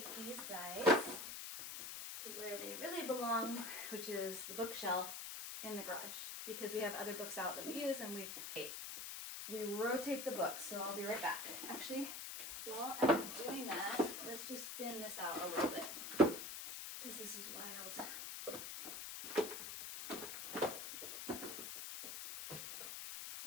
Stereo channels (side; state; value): left; noise; hiss, 6 dB below the sound